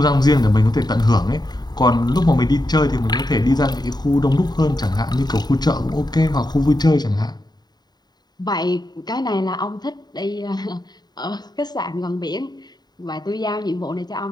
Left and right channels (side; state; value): right; late; 0.20 ms